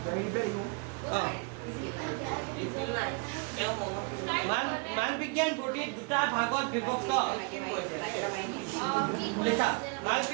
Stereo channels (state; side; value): quieter; left; 33.0 dB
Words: মালপিঘিয়ান বডি দুটা ভাগত বিভক্ত লিখা